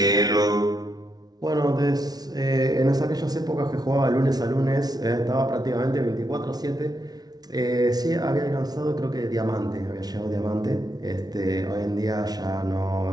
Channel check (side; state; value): left; late; 0.19 ms